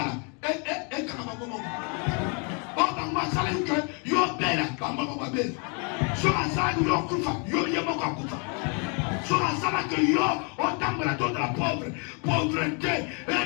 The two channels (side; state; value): right; quieter; 36.5 dB